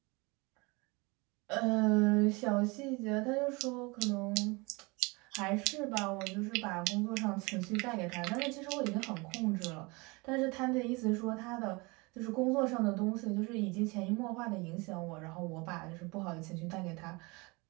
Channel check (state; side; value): quieter; left; 26.5 dB